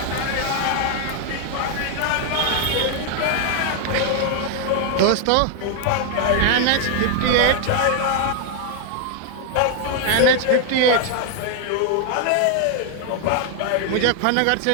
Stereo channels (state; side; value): different; both; correlation 0.00